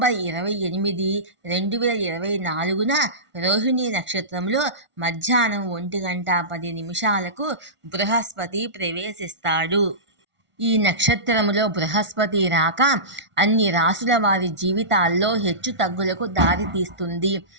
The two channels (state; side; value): late; left; 1.4 ms